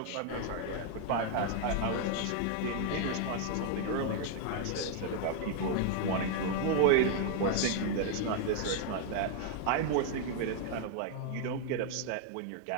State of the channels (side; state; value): both; different; correlation 0.00